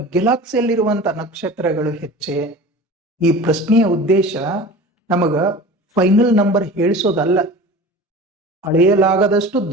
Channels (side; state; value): both; normal; correlation 0.37